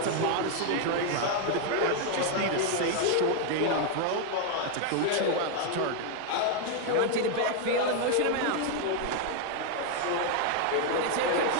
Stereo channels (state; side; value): different; both; correlation 0.00